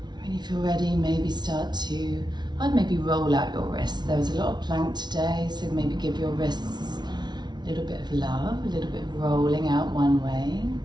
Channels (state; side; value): late; left; 0.20 ms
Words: When you feel ready, maybe I'd maybe roll out your wrists. There was a lot of plank today, so maybe give your wrists a little bit of love, a little bit of rolling out one way,